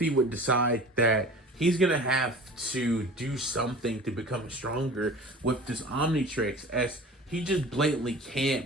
would decide that he's going to have to do something to become stronger with this Omnitrix, as he just blatantly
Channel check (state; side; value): normal; both; correlation 0.40